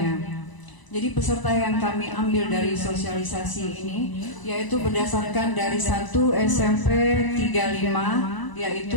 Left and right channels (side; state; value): right; late; 1.0 ms